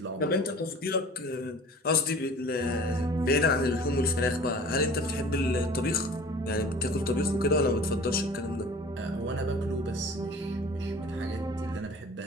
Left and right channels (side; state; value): both; normal; correlation 0.44